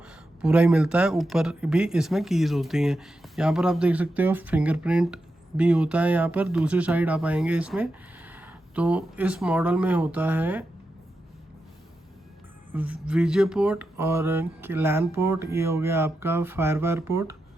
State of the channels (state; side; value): normal; both; correlation 0.88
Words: पूरा ही मिलता है, ऊपर भी इसमें कीज़ होती हैं। यहाँ पर आप देख सकते हो फिंगरप्रिंट भी होता है। यहाँ पर दूसरी साइड आप आएंगे इसमें तो इस मॉडल में होता है वीजे पोर्ट और लैन पोर्ट, ये हो गया आपका फायरवायर पोर्ट,